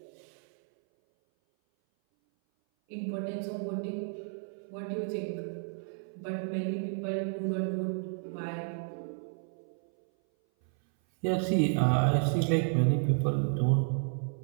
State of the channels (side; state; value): left; silent; 57 dB below the other